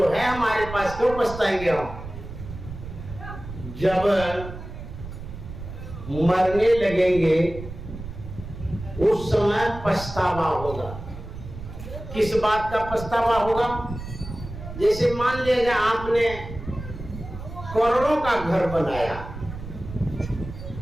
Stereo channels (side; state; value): right; noise; rumble, 11 dB below the sound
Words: है हमारे पास, क्यों पछताएंगे हम। जब मरने लगेंगे उस समय पछतावा होगा। किस बात का पछतावा होगा? जैसे मान लीजिए आपने करोड़ों का घर बनाया,